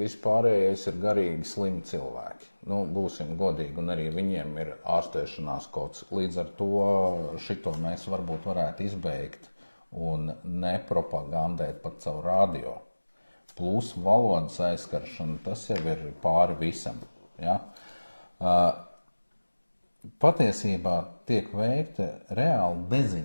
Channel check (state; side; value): inverted; both; correlation -1.00